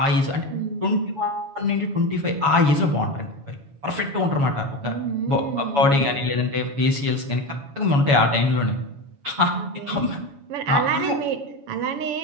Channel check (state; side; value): late; left; 7.1 ms